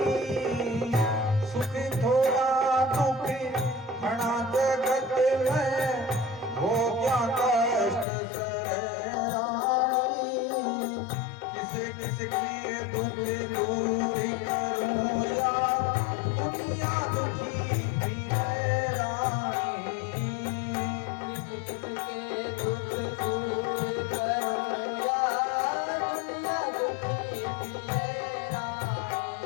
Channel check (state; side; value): drops out; right; at 8.1 s